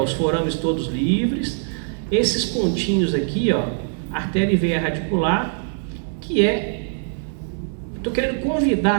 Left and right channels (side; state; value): left; silent; 64 dB below the other